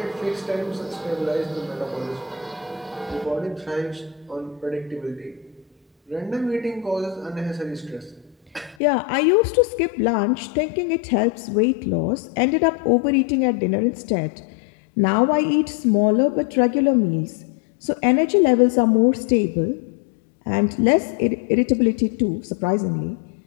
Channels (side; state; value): right; drops out; at 8.8 s